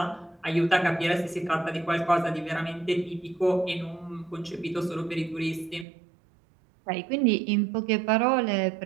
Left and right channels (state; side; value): drops out; left; at 5.9 s